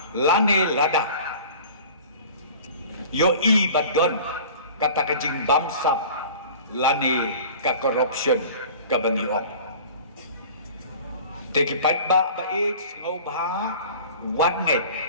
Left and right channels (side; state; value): both; inverted; correlation -0.42